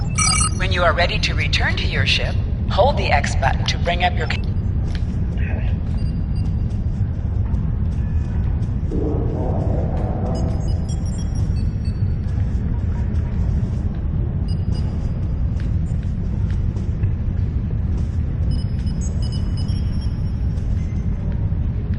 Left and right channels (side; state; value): both; identical; correlation 1.00